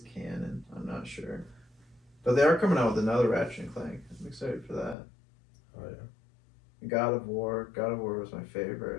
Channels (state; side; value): drops out; right; at 5.0 s